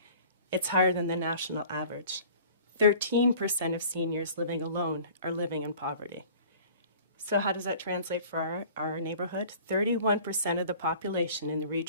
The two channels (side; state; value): both; inverted; correlation -0.48